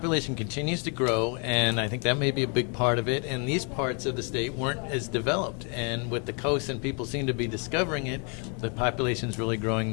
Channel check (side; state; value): right; quieter; 37.6 dB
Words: continues to grow, and I think that may be a big part of it. And these parts of the state weren't as developed. And with the coast and people seem to be discovering it, the population's really growing